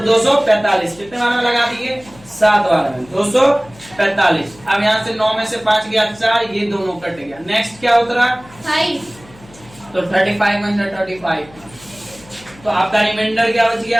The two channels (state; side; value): noise; left; hum, 24 dB below the sound